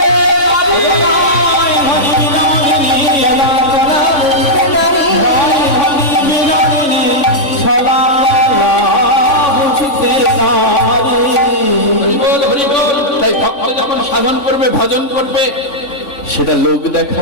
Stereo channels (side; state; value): right; late; 3.5 ms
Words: জানি। আয় হরি বিনোদিনী, ছলা গলা বুঝিতে নারী, আয় হরি বিনোদিনী, ছলা গলা বুঝিতে নারী। হরি বল হরি বল। তাই ভক্ত যখন সাধন করবে, ভজন করবে, সেটা লোক